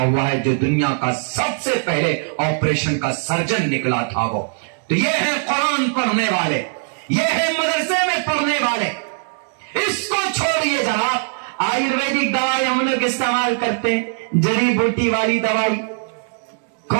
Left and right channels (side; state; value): left; silent; 65 dB below the other